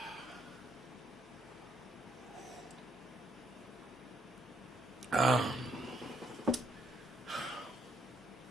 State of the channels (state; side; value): noise; left; hum, 23 dB below the sound